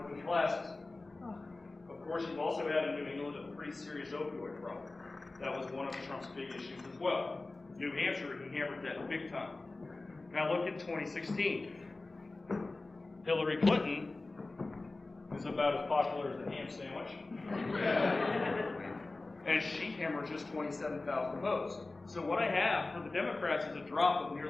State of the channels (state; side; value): quieter; right; 3.2 dB